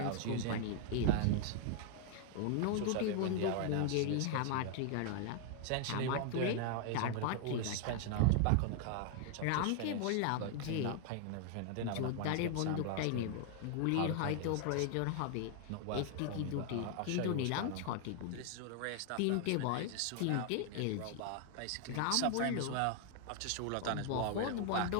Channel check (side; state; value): both; different; correlation 0.00